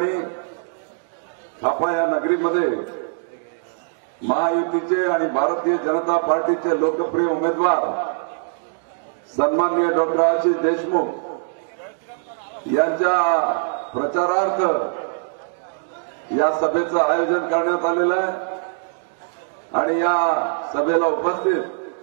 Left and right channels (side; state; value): left; silent; digital silence